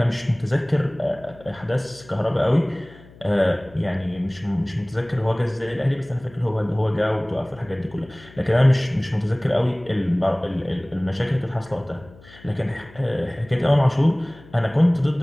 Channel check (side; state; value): left; noise; hum, 23 dB below the sound